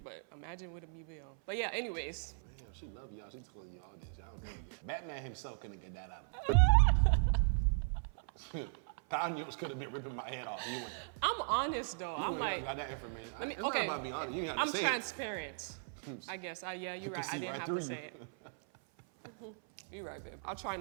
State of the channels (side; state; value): left; silent; 53 dB below the other